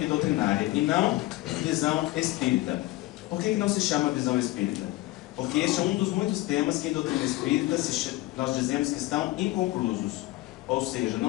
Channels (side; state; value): right; quieter; 18.3 dB